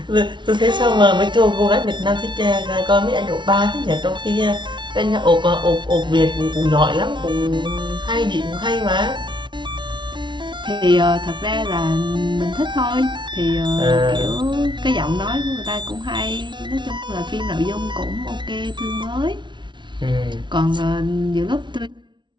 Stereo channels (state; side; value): late; left; 0.23 ms